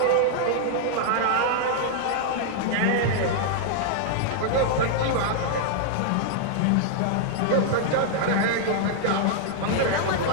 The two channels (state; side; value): different; both; correlation -0.01